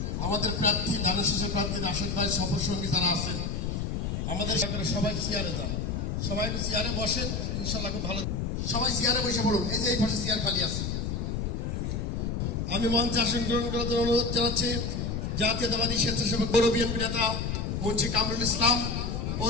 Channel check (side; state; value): left; noise; rumble, 2 dB below the sound